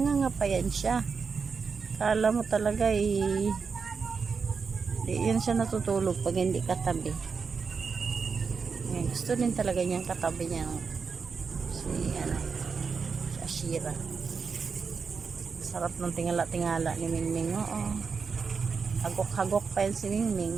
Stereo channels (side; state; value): left; quieter; 5.4 dB